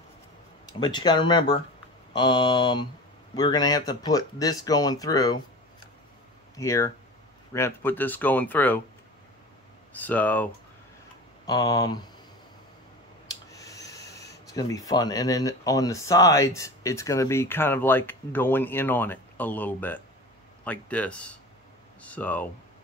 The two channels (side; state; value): both; normal; correlation 0.34